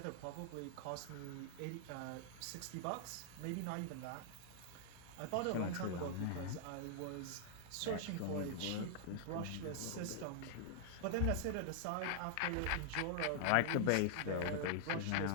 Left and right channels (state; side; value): different; both; correlation -0.01